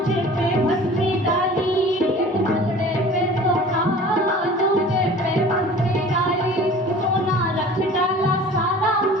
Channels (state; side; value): normal; both; correlation 0.44